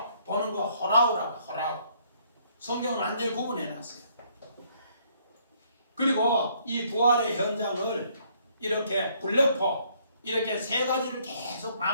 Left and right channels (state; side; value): inverted; both; correlation -0.66